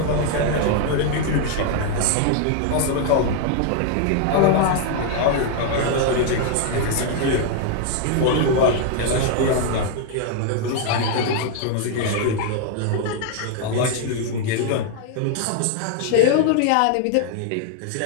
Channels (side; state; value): both; different; correlation 0.00